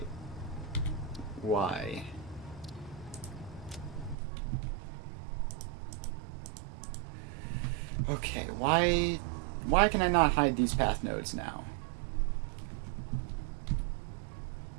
Why? Okay, why can I not hide these path nodes now?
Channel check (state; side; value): drops out; left; at 4.2 s